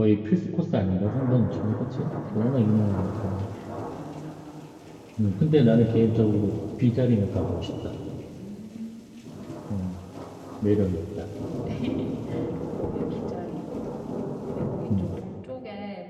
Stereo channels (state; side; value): identical; both; correlation 1.00